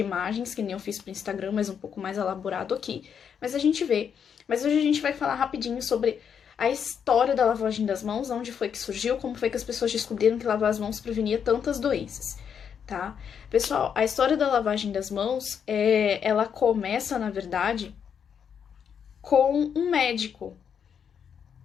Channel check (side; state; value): right; quieter; 7.5 dB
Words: que nem eu fiz pro Instagram, mas um pouco mais elaborado aqui. Mas a gente vê. Mas hoje a gente vai falar rapidinho sobre a história da lavagem das mãos, onde foi que surgiu, como foi que as pessoas descobriram que lavar as mãos prevenia tantas doenças, tá? Pessoal, a história da lavagem das mãos, ela começa, na verdade, com um médico,